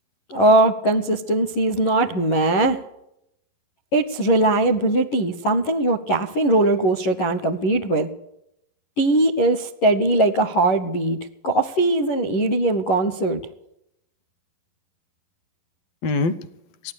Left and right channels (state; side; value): late; right; 11 ms